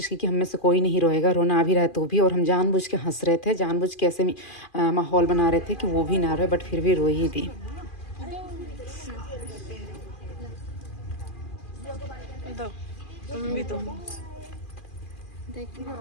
की कि हम में से कोई नहीं रोएगा, रोना आ भी रहा है तो भी, और हम जानबूझ के हंस रहे थे, जानबूझ के ऐसे माहौल बना रहे थे कि वो भी ना रोए, बट फिर भी रोई ही थी। तुम भी तो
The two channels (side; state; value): right; late; 2.4 ms